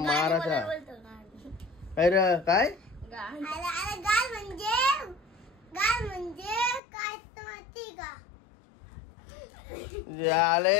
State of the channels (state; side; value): drops out; right; at 6.8 s